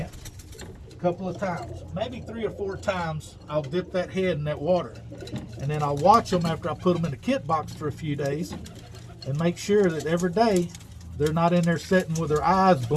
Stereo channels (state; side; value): identical; both; correlation 1.00